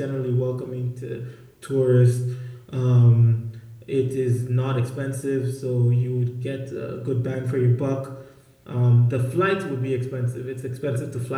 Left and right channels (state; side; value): identical; both; correlation 1.00